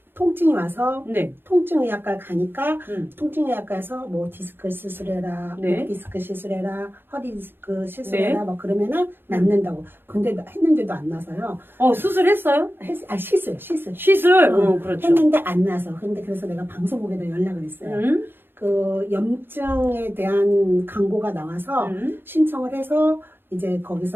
통증이 와서 네. 통증의학과 가니까 음. 통증의학과에서 뭐 디스크 시술해라, 네. 목 디스크 시술해라, 허리 디스크 시술해라 네. 뭐 그러면은 낫는다고. 근데 했는데도 안 나서요. 수술했어요? 시술. 시술? 그렇죠. 했는데 안 나서. 근데 그래서 내가 방송국에다 연락을 했어요. 그 염증에 대한 광고가 나와서 신청을 해서 이제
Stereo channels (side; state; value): left; late; 0.10 ms